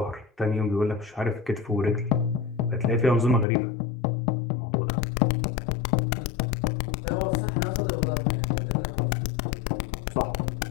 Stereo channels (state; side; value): drops out; right; at 3.5 s